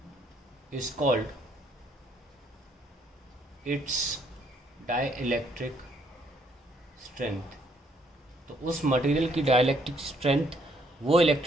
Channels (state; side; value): normal; both; correlation 0.68